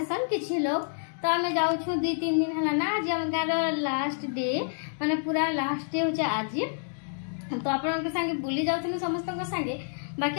किछि लोग तो आम जाऊँ 2-3 दिन है ना आज आम गाँव लास्ट डे माने पूरा लास्ट डे हो आज। तो आपण संगे बुली जाऊँ समस्त संगे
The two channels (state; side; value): silent; right; digital silence